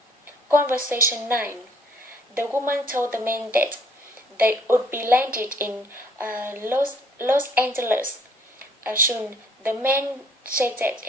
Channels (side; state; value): both; normal; correlation 0.61